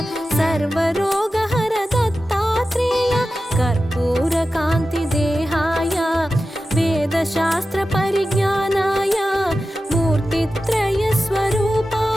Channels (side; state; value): both; normal; correlation 0.93